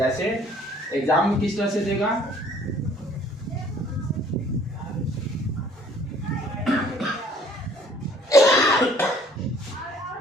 एग्जाम में किस तरह से देगा,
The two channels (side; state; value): both; normal; correlation 0.57